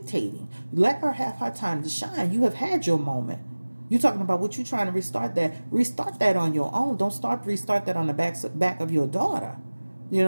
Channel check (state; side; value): inverted; both; correlation -1.00